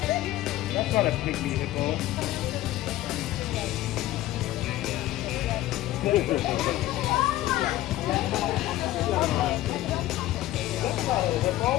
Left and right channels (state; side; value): quieter; right; 15.3 dB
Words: That's not a big vehicle.